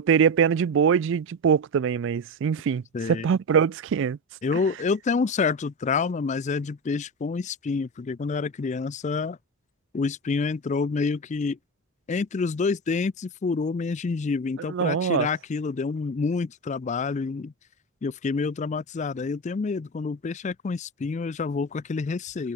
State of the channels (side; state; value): both; normal; correlation 0.21